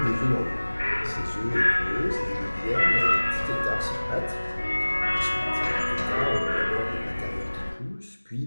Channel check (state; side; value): inverted; both; correlation -1.00